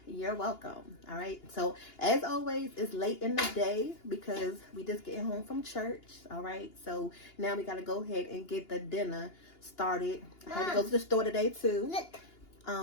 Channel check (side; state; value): right; late; 2.8 ms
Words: you're welcome. All right. So as always, it's late in the day because we just getting home from church. All right. So now we got to go ahead and get the dinner started. I had to go to the store today too.